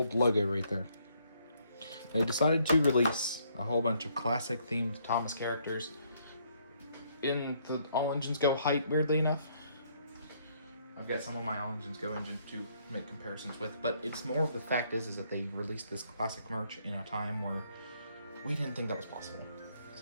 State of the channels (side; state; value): both; inverted; correlation -0.69